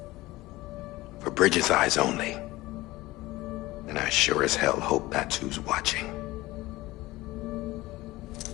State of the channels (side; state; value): right; quieter; 19.0 dB